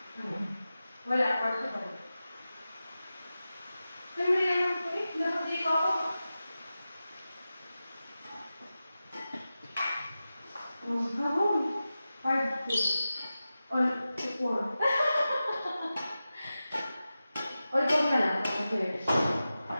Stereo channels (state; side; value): inverted; both; correlation -0.94